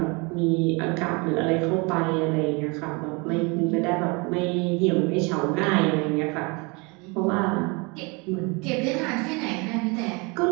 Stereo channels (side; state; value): left; quieter; 29.2 dB